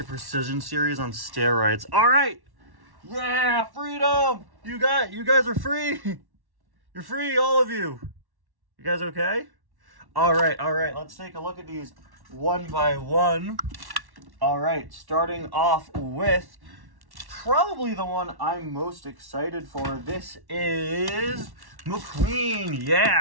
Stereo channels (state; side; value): late; left; 1.1 ms